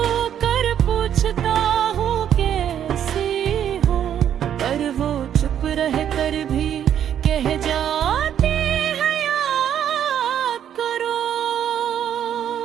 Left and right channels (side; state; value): left; quieter; 9.7 dB